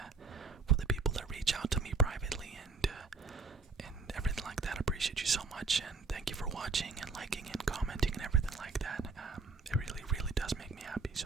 for the people that reach out to me privately and everything like that, I appreciate you so much, and thank you for watching and liking and commenting and everything like that. It really does make me happy.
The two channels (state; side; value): quieter; left; 4.5 dB